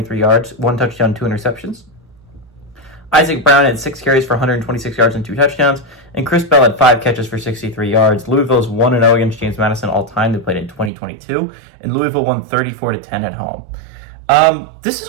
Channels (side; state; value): left; drops out; at 10.9 s